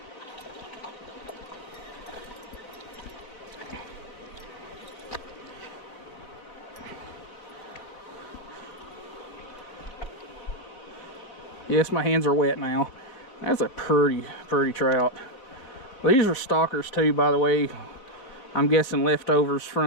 Yes, my hands are wet now. That's a pretty trout. These are stalkers too, by the way. I'm guessing leftovers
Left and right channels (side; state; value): right; late; 3.9 ms